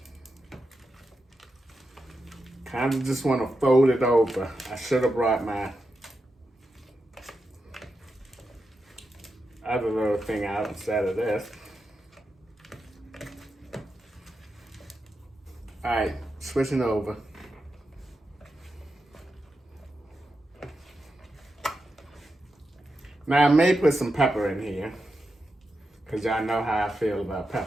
Kind of just want to fold it over. I should have brought my other little thing out instead of this. All right, switching over. Now I may put some pepper in here, because y'all know how I feel about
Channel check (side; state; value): both; normal; correlation 0.88